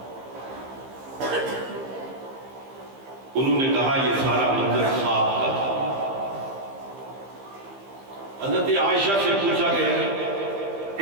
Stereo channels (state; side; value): late; left; 15 ms